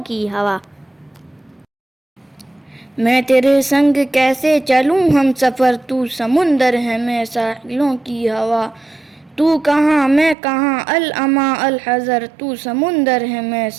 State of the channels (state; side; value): drops out; left; at 10.4 s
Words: کی ہوا، میں تیرے سنگ کیسے چلوں ہم سفر، تو سمندر ہے میں ساحلوں کی ہوا، تو کہاں میں کہاں الاما الحذر، تو سمندر ہے میں